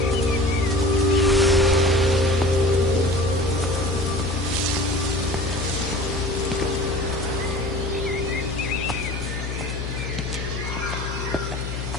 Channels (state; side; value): noise; left; hum, 5 dB below the sound